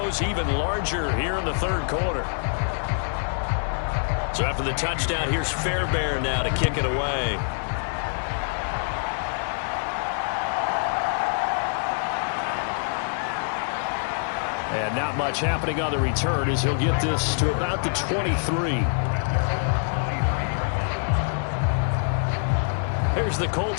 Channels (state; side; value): silent; right; digital silence